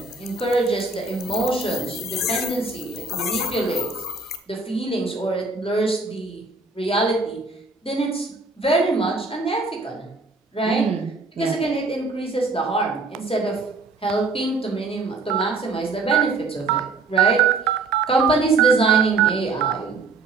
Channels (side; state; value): left; quieter; 3.8 dB